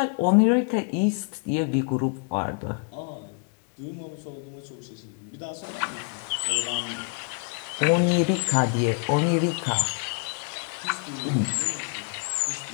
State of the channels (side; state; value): right; quieter; 38.1 dB